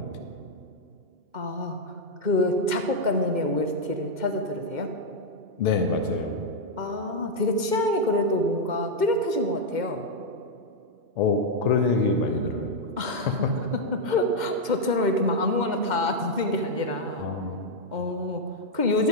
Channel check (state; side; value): late; left; 2.1 ms